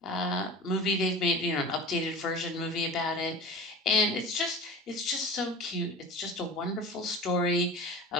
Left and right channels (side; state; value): both; normal; correlation 0.35